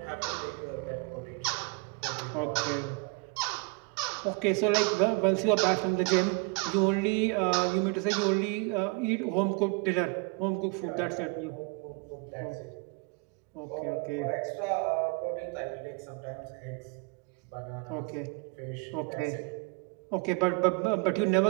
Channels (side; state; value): left; quieter; 28.6 dB